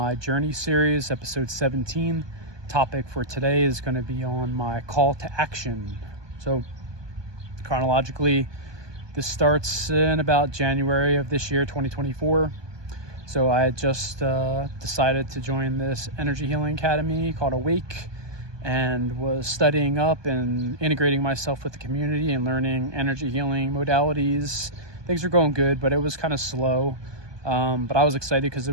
journey series, episode 17. Topic for today is going to be on my call to action. So, chronologically, this starts in about January of this year, 2024. So, I had just decided to join this energy healing academy called Awake, and was studying up and integrating myself with the community and learning energy healing modalities. Things were going good, but it was kind of slow. But I was excited because it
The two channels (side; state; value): left; late; 1.2 ms